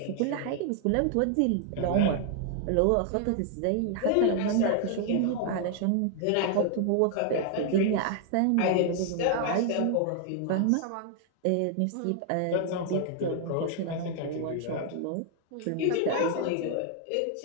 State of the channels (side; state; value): both; different; correlation 0.00